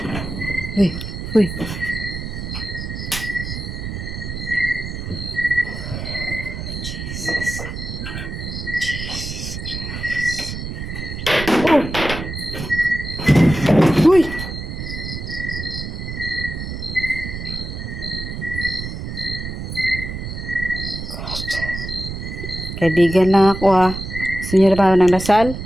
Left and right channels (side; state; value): right; noise; rumble, 7 dB below the sound